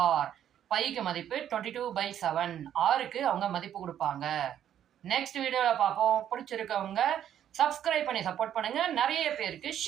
பைக்கு மதிப்பு 22/7, ஆருக்கு அவங்க மதிப்பு கொடுப்பாங்க. நெக்ஸ்ட் வீடியோல பார்ப்போம். பிடிச்சிருக்கவங்க சப்ஸ்கிரைப் பண்ணி சப்போர்ட் பண்ணுங்க. நிறைய பேருக்கு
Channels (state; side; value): quieter; left; 10.3 dB